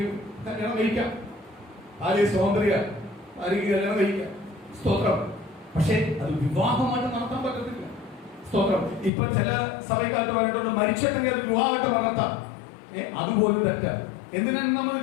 കല്യാണം കഴിക്കാം. ഭാര്യ സ്വാതന്ത്ര്യ, ഭാര്യയ്ക്ക് കല്യാണം കഴിക്കാം. സ്തോത്രം. പക്ഷേ അത് വിവാഹമായിട്ട് നടത്താൻ പറ്റത്തില്ല. സ്തോത്രം. ഇപ്പൊ ചില സഭയ്ക്കകത്ത് പറഞ്ഞിട്ടുണ്ട് മരിച്ചിട്ടെങ്കിൽ അത് വിവാഹമായിട്ട് നടത്താം. അതുപോലും തെറ്റാണ്. എന്തിനാണ് നമ്മൾ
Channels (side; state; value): right; drops out; at 9.1 s